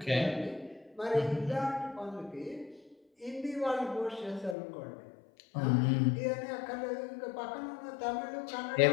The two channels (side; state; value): right; drops out; at 4.5 s